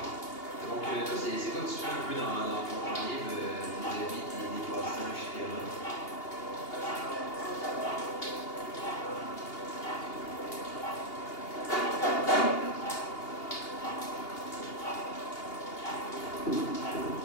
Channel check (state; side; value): late; right; 2.8 ms